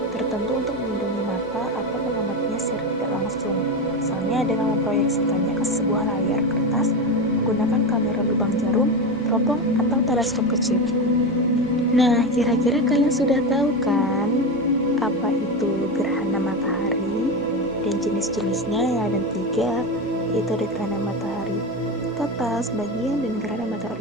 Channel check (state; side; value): normal; both; correlation 0.18